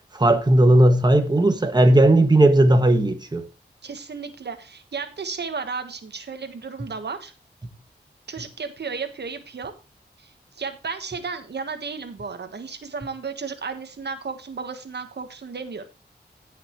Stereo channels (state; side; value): normal; both; correlation 0.83